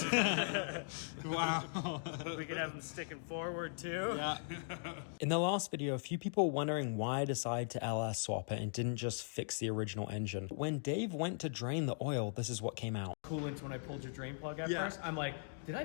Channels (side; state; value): right; silent; digital silence